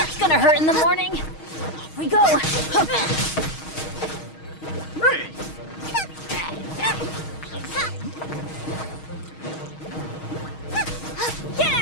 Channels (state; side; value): late; right; 6.4 ms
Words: gonna hurt in the morning. Off we go. Get